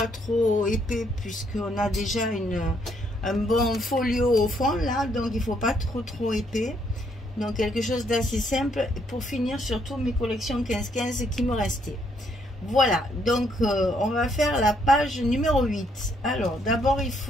trop épais puisqu'on a déjà un bon folio au fond là. Donc, il ne faut pas trop épais. Donc, quelque chose d'assez simple pour finir surtout mes collections 15-15 qui me restaient. Voilà, donc on va faire la page numéro 8. Alors, d'abord, il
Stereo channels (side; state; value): both; normal; correlation 0.71